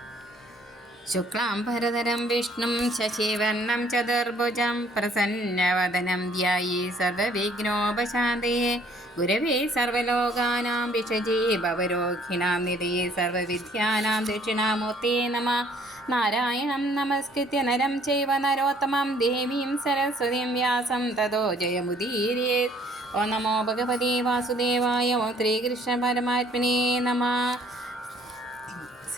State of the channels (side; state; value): both; normal; correlation 0.60